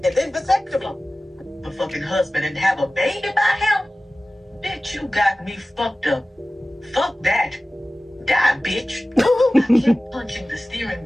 then vasectomy. The fucking husband and have a baby by him? Bitch, you got me fucked up. Fuck that. Die, bitch. I kept punching the steering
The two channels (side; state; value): both; normal; correlation 0.97